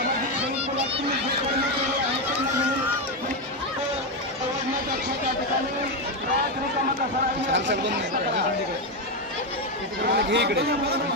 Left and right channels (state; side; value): normal; both; correlation 0.08